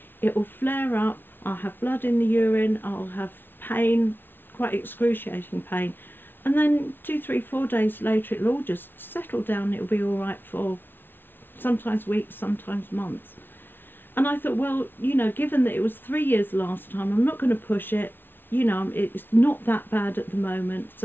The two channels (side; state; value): right; late; 0.10 ms